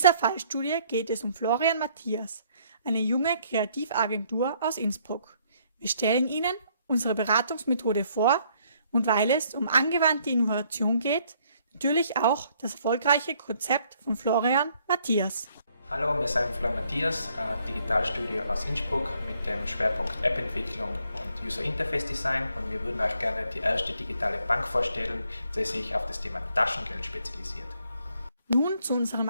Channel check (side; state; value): both; inverted; correlation -0.67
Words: Fallstudie geht es um Florian Matthias, eine junge Kreativagentur aus Innsbruck. Wir stellen Ihnen unsere Beratungsmethode vor und weil es um angewandte Innovation geht, natürlich auch das erfolgreiche Konzept von Florian Matthias. Hallo, wir sind Florian Matthias, Digitalstudio aus Innsbruck mit dem Schwerpunkt App-Entwicklung und User Interface Design und wir würden euch gerne die erste digitale Bank vorstellen, die sich auf das Thema Taschengeld spezialisiert. Nun zu unserem